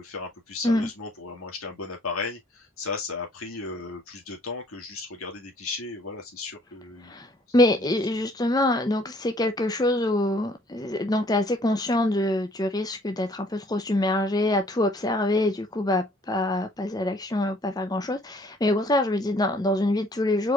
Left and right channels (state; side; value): normal; both; correlation 0.60